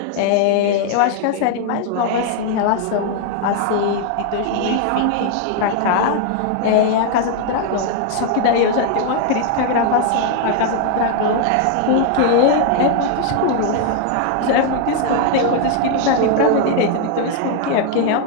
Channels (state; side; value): different; both; correlation 0.00